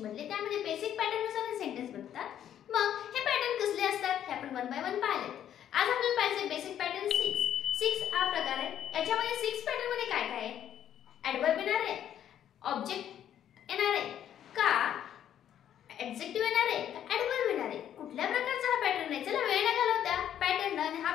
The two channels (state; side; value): quieter; right; 10.3 dB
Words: मधले त्यामध्ये बेसिक पॅटर्न नुसार हे सेंटेन्स बनतात. मग हे पॅटर्न कसले असतात हे आपण वन बाय वन पाहिलेत. आज आपल्याला पाहिजे बेसिक पॅटर्न 6 हा प्रकार आहे. याच्यामध्ये 6 पॅटर्न मध्ये काय काय आहे? ॲडव्हर्ब येणार आहे, ऑब्जेक्ट येणार आहे का, ॲडजेक्टिव्ह येणार आहे का, ॲडव्हर्ब येणार आहे. कुठल्या प्रकारचा हा पॅटर्न आहे? चला वेळ न घालवता पॅटर्न आणि